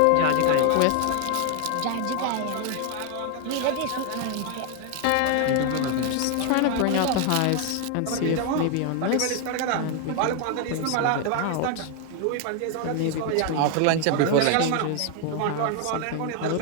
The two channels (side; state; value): both; different; correlation 0.01